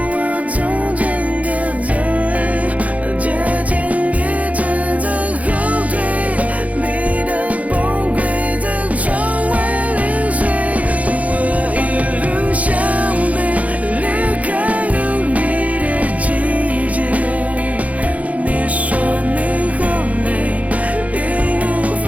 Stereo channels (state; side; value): late; left; 0.069 ms